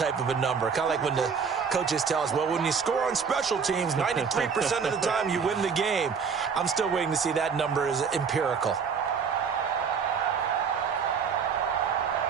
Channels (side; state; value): left; quieter; 6.1 dB